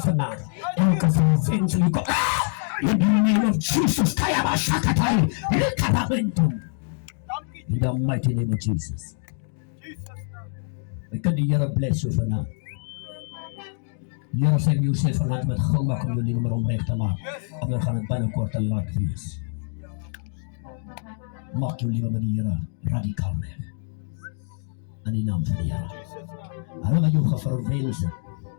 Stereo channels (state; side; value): silent; right; 58 dB below the other